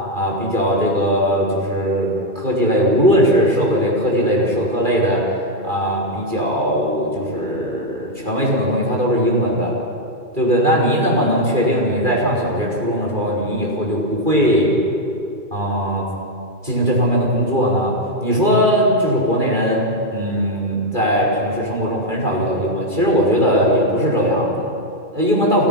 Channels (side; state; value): left; late; 2.3 ms